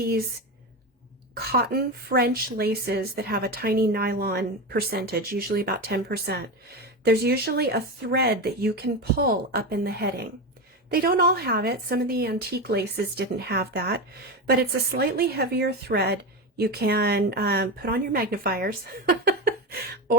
cotton French laces that have a tiny nylon percentage, usually about 10%. There's usually a thread that you can pull up in the heading. They don't all have it. Some of the antique laces didn't have that, but it's a slightly heavier thread. You can put on your magnifiers,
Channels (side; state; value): both; normal; correlation 0.18